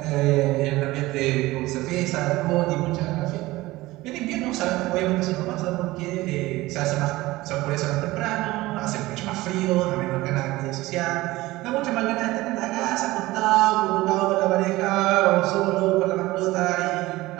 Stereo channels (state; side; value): quieter; left; 18.8 dB